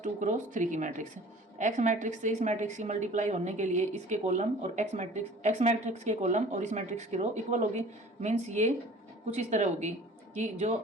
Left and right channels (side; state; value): both; normal; correlation 0.47